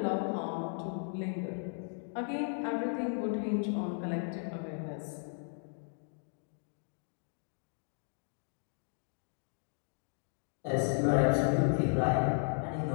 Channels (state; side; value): silent; right; 54 dB below the other